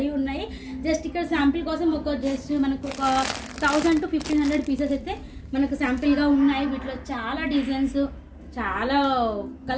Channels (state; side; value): identical; both; correlation 1.00